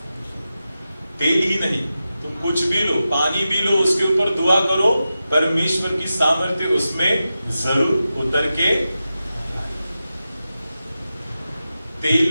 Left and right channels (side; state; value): both; inverted; correlation -0.92